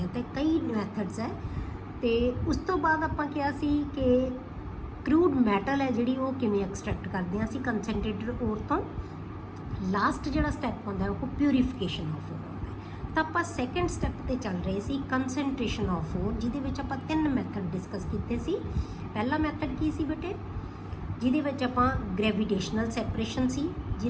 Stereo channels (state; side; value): identical; both; correlation 1.00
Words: ਹਾਂ। ਤੇ ਕਈ ਮੈਥਡਸ ਹੈ। ਤੇ ਉਸ ਤੋਂ ਬਾਅਦ ਆਪਾਂ ਕਿਹਾ ਸੀ ਕਿ ਕਰੂਡ ਮੈਟਲ ਹੈ ਜਿਹੜੀ ਉਹ ਕਿਵੇਂ ਐਕਸਟ੍ਰੈਕਟ ਕਰਦੇ ਹਾਂ ਅਸੀਂ ਕੰਸਨਟ੍ਰੇਟਡ ਓਰ ਤੋਂ। ਲਾਸਟ ਜਿਹੜਾ ਸਟੈਪ ਹੁੰਦਾ ਉਹ ਪਿਊਰੀਫਿਕੇਸ਼ਨ ਆਫ ਓਰ ਹੁੰਦਾ। ਤਾਂ ਆਪਾਂ ਸੈਕੰਡ ਸਟੈਪ ਤੇ ਚੱਲ ਰਹੇ ਸੀ, ਕੰਸਨਟ੍ਰੇਸ਼ਨ ਆਫ ਓਰ, ਜਿਹਦੇ ਵਿੱਚ ਆਪਾਂ 3 ਮੈਥਡ ਡਿਸਕਸ ਕੀਤੇ ਸੀ। ਪਹਿਲਾ ਮੈਥਡ ਕੀ ਸੀ ਬੇਟੇ? ਜਿਹਦੇ ਵਿੱਚ ਆਪਾਂ ਗ੍ਰੈਵੀਟੇਸ਼ਨਲ ਸੈਪਰੇਸ਼ਨ ਸੀ,